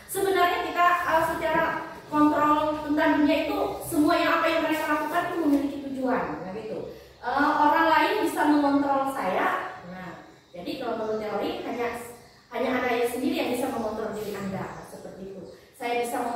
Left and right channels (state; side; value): identical; both; correlation 1.00